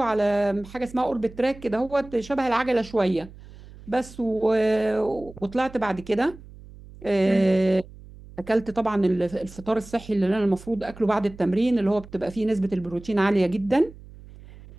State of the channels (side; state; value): right; noise; hum, 19 dB below the sound